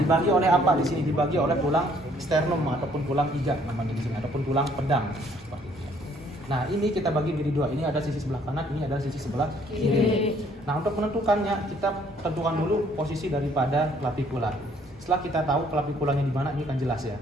oleh apa di sini? Dibagi oleh tulang sternum ataupun tulang iga namanya di sini, ataupun tulang pedang. Seperti itu. Nah ini kita bagi menjadi dua. Ini ada sisi sebelah kanan, ini ada sisi sebelah kiri. Nah untuk menentukannya kita tentukan dulu posisi daripada clavicula. Setelah kita tahu claviculanya di mana, ini kan jelas ya.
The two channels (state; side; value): normal; both; correlation 0.63